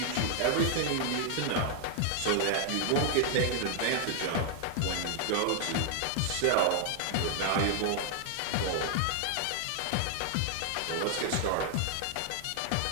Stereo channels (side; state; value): both; different; correlation 0.00